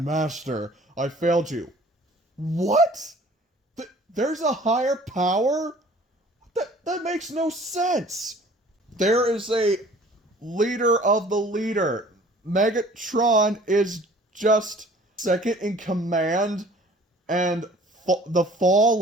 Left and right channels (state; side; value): normal; both; correlation 0.51